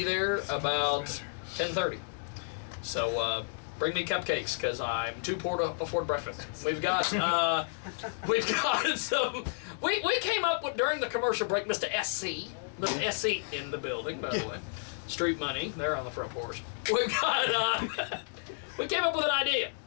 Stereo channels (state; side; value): silent; right; digital silence